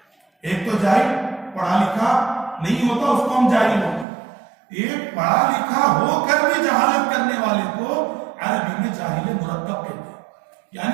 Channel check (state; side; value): drops out; left; at 4.0 s